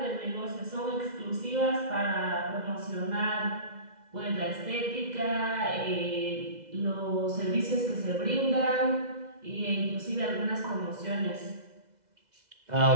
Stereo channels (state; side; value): late; left; 2.0 ms